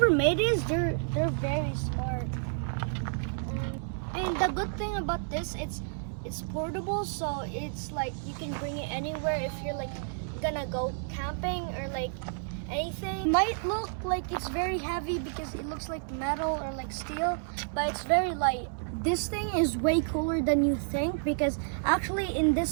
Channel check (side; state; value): left; silent; 58 dB below the other